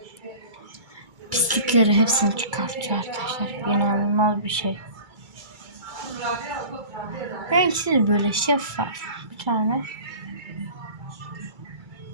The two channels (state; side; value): late; left; 2.3 ms